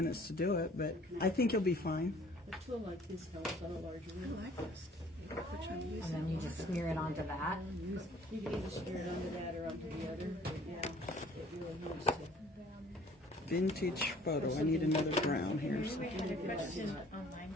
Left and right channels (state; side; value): normal; both; correlation 0.54